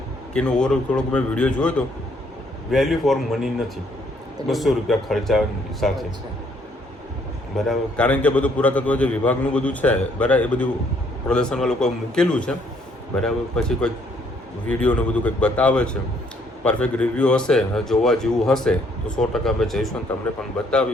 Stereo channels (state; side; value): normal; both; correlation 0.67